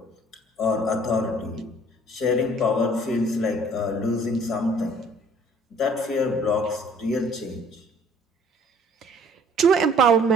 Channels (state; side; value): normal; both; correlation 0.55